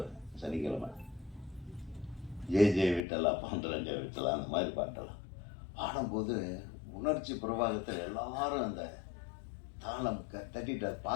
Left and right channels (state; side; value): drops out; right; at 3.1 s